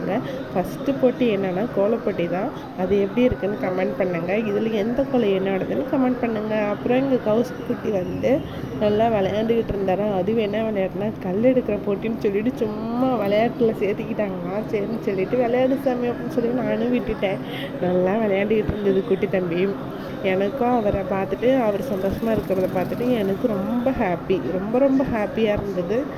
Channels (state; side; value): identical; both; correlation 1.00